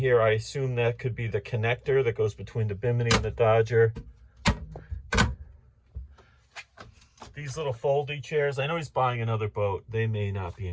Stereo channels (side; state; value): both; identical; correlation 1.00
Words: I assume that could be the connector that goes between the Bimini and the Dodger. These little foldy chairs, I know he's buying another boat. They may not be